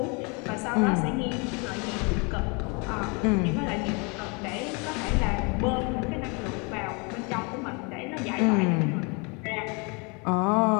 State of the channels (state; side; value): quieter; right; 31.5 dB